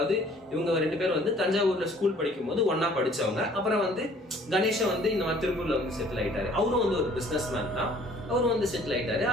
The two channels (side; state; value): both; normal; correlation 0.55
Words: இவங்க 2 பேரும் வந்து தஞ்சாவூர்ல ஸ்கூல் படிக்கும் போது ஒன்னா படிச்சவங்க. அப்புறம் வந்து கணேஷை வந்து இந்த மாதிரி திருப்பூர்ல வந்து செட்டில் ஆயிட்டாரு. அவரும் வந்து ஒரு பிசினஸ் மேன் தான், அவரும் வந்து செட்டில் ஆயிட்டாரு.